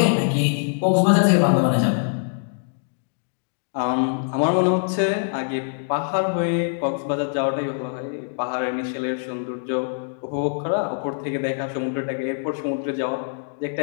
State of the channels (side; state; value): right; silent; digital silence